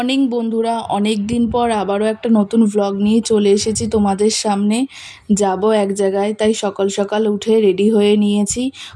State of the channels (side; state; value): both; identical; correlation 1.00